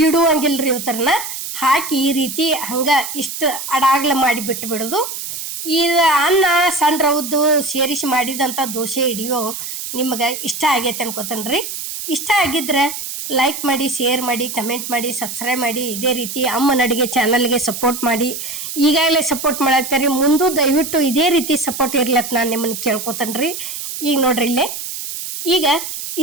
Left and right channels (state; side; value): noise; right; hiss, 7 dB below the sound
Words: ಇವತ್ತರನ್ನ ಹಾಕಿ ಈ ರೀತಿ ಹಂಗೆ ಇಷ್ಟು ಅಡಾಗ್ಲ ಮಾಡಿ ಬಿಟ್ಟು ಬಿಡೋದು. ಈ ಅನ್ನ ಸಣ್ಣ ರವದ್ದು ಸೇರಿಸಿ ಮಾಡಿದಂಥ ದೋಸೆ ಹಿಡಿಯೋ ನಿಮಗೆ ಇಷ್ಟ ಆಗೈತೆ ಅನ್ಕೋತೇನ್ರಿ. ಇಷ್ಟ ಆಗಿದ್ರೆ ಲೈಕ್ ಮಾಡಿ, ಶೇರ್ ಮಾಡಿ, ಕಮೆಂಟ್ ಮಾಡಿ, ಸಬ್ಸ್ಕ್ರೈಬ್ ಮಾಡಿ. ಇದೇ ರೀತಿ ಅಮ್ಮನ ಅಡುಗೆ ಚಾನಲ್ಗೆ ಸಪೋರ್ಟ್ ಮಾಡಿ. ಈಗಾಗಲೇ ಸಪೋರ್ಟ್ ಮಾಡಾಕ್ತಾರಿ, ಮುಂದೂ ದಯವಿಟ್ಟು ಇದೇ ರೀತಿ ಸಪೋರ್ಟ್ ಇರ್ಲತ್ತ ನಾನು ನಿಮ್ಮನ್ನು ಕೇಳ್ಕೊತೇನ್ರಿ. ಈಗ ನೋಡ್ರಿ, ಇಲ್ಲೇ ಈಗ